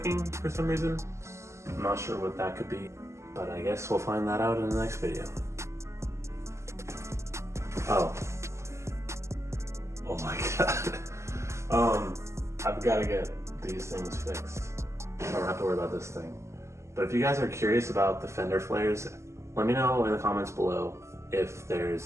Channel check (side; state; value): left; late; 0.13 ms